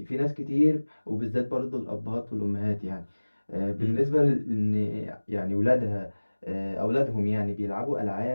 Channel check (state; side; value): inverted; both; correlation -1.00